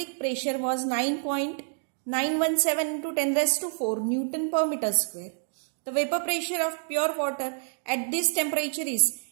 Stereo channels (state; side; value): silent; left; digital silence